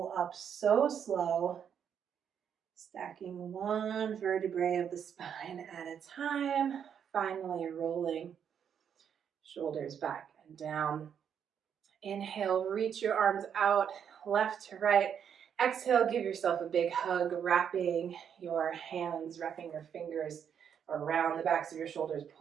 up so slow. Stacking one vertebrae of the spine at a time. Finally rolling shoulders back and down. Inhale, reach your arms out, left to right. Exhale, give yourself a big hug, wrapping your hands, wrapping your fingers around the backs of your shoulders.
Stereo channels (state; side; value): quieter; left; 8.1 dB